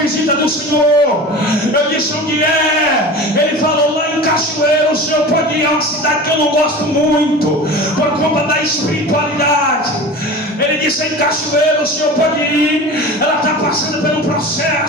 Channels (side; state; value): both; normal; correlation 0.34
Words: do Senhor. Eu disse: onde é? Ele falou: lá em Cachoeiro. O senhor pode ir? É uma cidade que eu não gosto muito, por conta da espiritualidade. Ele disse: em Cachoeiro, o senhor pode ir? Ela está passando por um